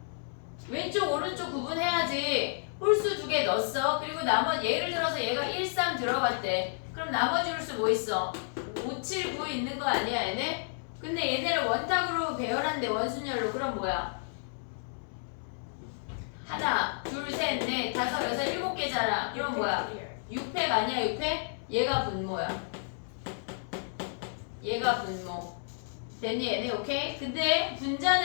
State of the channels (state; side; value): silent; right; 57 dB below the other